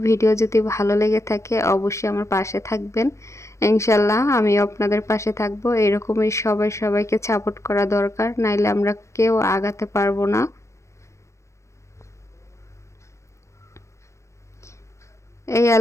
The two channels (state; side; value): late; right; 0.14 ms